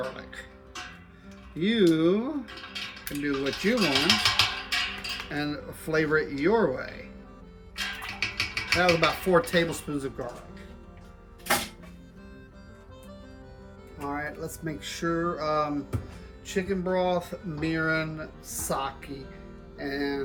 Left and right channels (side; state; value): both; identical; correlation 1.00